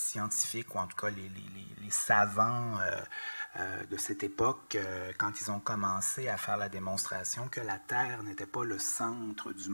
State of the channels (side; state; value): both; inverted; correlation -1.00